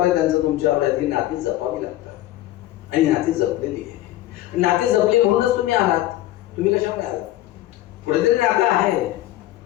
आहे, त्यांचं तुमच्यावर आहे. ही नाती जपावी लागतात आणि नाती जपलेली आहे. नाती जपली म्हणूनच तुम्ही आलात. तुम्ही कशामुळे आलात? पुढे तरी नातं आहे.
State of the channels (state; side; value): quieter; right; 14.9 dB